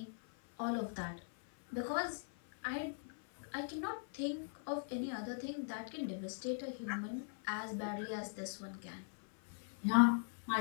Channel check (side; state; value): right; silent; 51 dB below the other